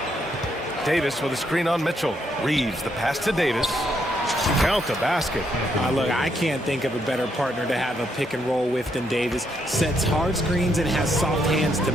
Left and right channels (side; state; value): both; normal; correlation 0.76